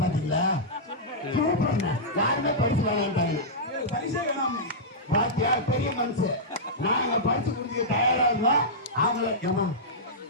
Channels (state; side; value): normal; both; correlation -0.12